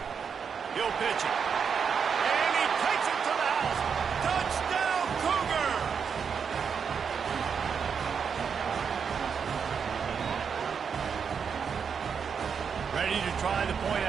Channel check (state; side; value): quieter; left; 6.5 dB